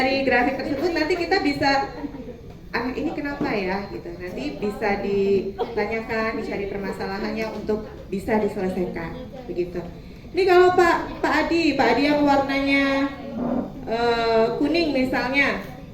grafik tersebut nanti kita bisa anak ini kenapa ya gitu. Nanti bisa ditanyakan, dicari permasalahannya untuk bisa diselesaikan. Begitu. Ini kalau Pak Adi yang warnanya kuning misalnya,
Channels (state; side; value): identical; both; correlation 1.00